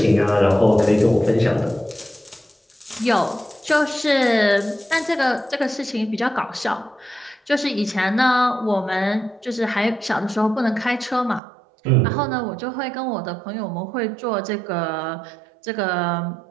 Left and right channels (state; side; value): drops out; left; at 11.4 s